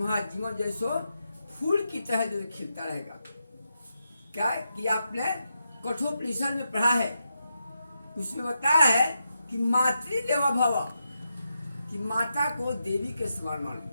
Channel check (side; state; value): both; inverted; correlation -0.86